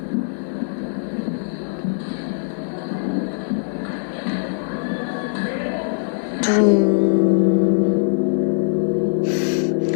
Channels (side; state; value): right; silent; digital silence